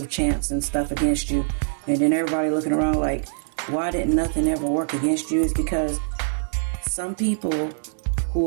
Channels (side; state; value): left; silent; digital silence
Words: chants and stuff against you. And then everybody looking around like, why didn't nothing ever work against you? Is because some people